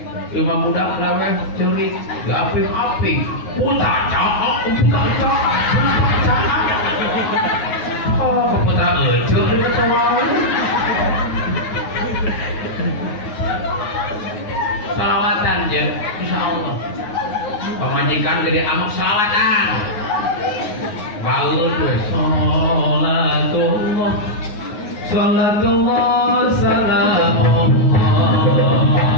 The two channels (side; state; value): right; late; 9.5 ms